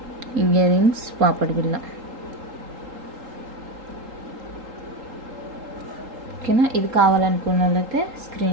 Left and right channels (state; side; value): late; left; 3.8 ms